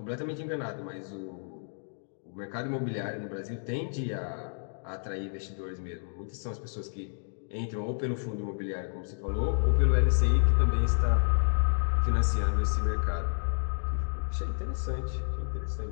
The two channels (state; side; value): silent; right; digital silence